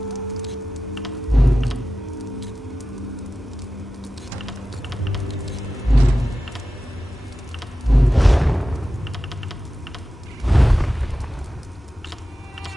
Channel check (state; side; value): normal; both; correlation 0.93